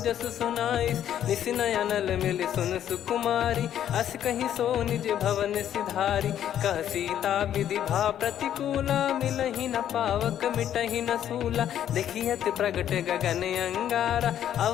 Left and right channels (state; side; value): quieter; right; 10.5 dB